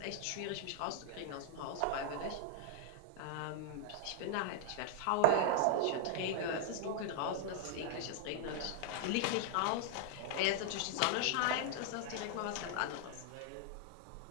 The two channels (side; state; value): both; different; correlation 0.00